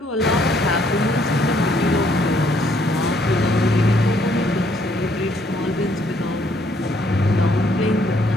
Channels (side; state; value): both; normal; correlation 0.67